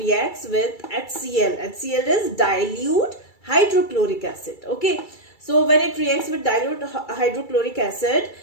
with HCl. HCl is dilute hydrochloric acid. Okay, so when it reacts with dilute hydrochloric acid,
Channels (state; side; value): late; right; 2.3 ms